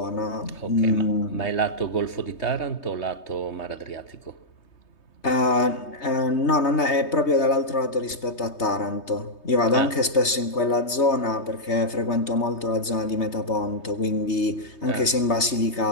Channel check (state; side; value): late; right; 3.2 ms